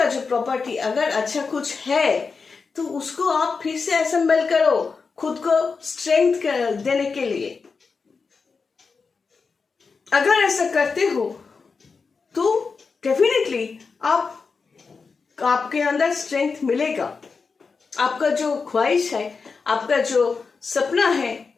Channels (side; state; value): right; quieter; 4.9 dB